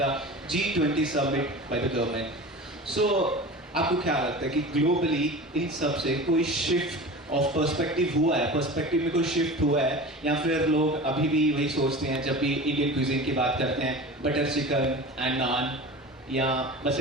G20 summit by the government, so आपको क्या लगता है कि globally इन सब से कोई shift of perspective हुआ है, पर्सपेक्टिव में कोई शिफ्ट हुआ है, या फिर लोग अभी भी वही सोचते हैं जब भी इंडियन क्यूजिन की बात करते हैं बटर चिकन एंड नान, या बस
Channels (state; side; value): normal; both; correlation 0.34